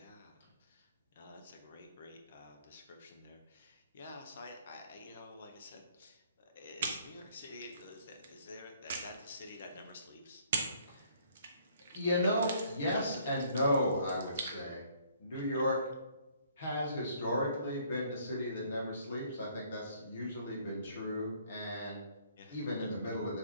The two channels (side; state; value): both; inverted; correlation -0.62